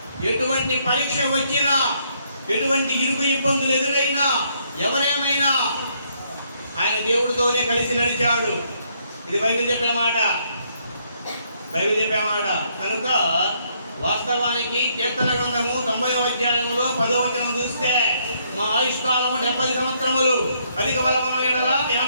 ఎటువంటి పరీక్ష వచ్చినా, ఎటువంటి ఇరుకు ఇబ్బందులు ఎదురైనా, ఎవరేమైనా ఆయన దేవుడితోనే కలిసి నడిచాడు. ఇది బైబిల్ చెప్పే మాట. కనుక వాస్తవానికి కీర్తన గ్రంథము 90వ అధ్యాయంలో 10వ వచనం చూస్తే, మా ఆయుష్కాలము 70 సంవత్సరములు, అధిక బలమున ఎడల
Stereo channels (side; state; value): both; inverted; correlation -0.71